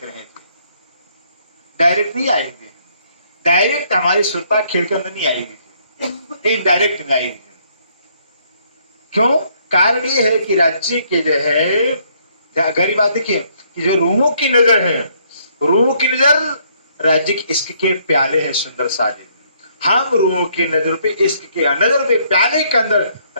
रहे हैं। डायरेक्ट नहीं आएंगे, डायरेक्ट हमारी सुरता खेल के अंदर नहीं आएगी, इनडायरेक्ट नहीं आएगी। क्यों? कारण ये है कि राज्य के जो है, गहरी बात देखिए, कि जो रूहों की नजर है, रूहों की नजर राज्य के इश्क के प्याले हैं सुंदर साजे। हम रूहों की नजर पे, इश्क के नजर पे, प्याले के अंदर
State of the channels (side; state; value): both; inverted; correlation -0.68